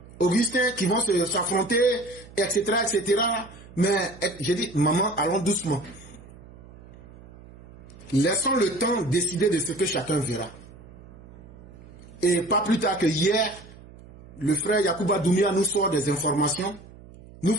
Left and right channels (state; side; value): noise; right; hum, 20 dB below the sound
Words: Augustin, qui vont s'affronter, etc., etc. Mais j'ai dit, maman, allons doucement. Laissons le temps décider de ce que chacun verra. Et pas plus tard que hier, le frère Yacouba Doumia nous sort des informations, nous